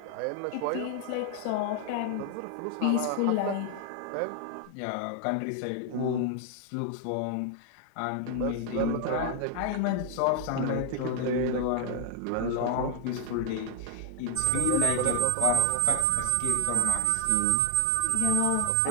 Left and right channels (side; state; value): both; different; correlation 0.00